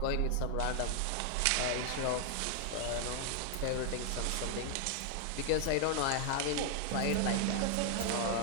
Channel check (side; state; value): both; different; correlation 0.00